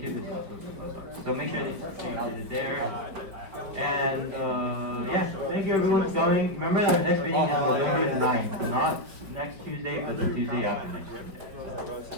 is also Talk About Stocks. So make sure that check out it there. And yeah, thank you everyone for coming. Remember that our next meeting is November 9th, not next Tuesday, but the Tuesday after next Tuesday.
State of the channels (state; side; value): late; left; 5.0 ms